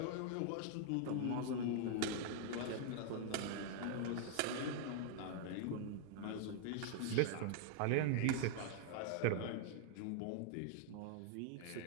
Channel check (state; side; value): different; both; correlation 0.00